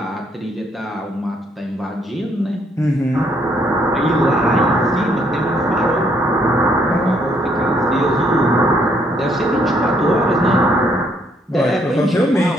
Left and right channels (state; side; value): normal; both; correlation 0.69